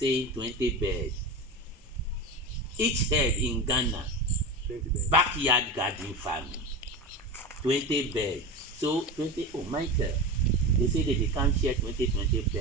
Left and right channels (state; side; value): normal; both; correlation 0.25